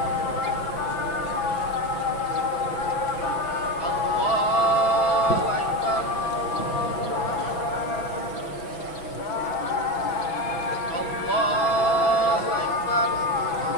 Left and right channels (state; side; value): late; right; 6.2 ms